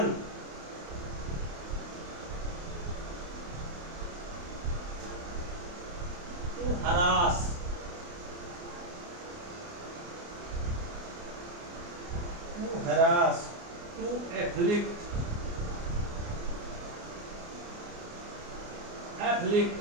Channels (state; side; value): late; left; 29 ms